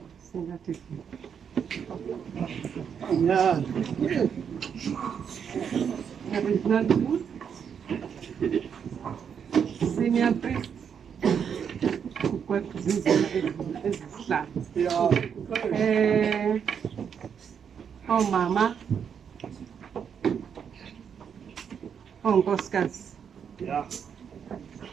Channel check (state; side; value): quieter; left; 7.4 dB